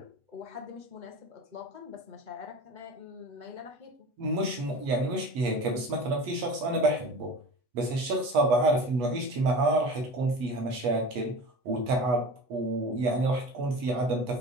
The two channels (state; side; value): late; left; 8.2 ms